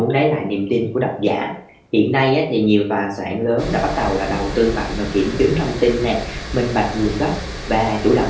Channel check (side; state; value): both; identical; correlation 1.00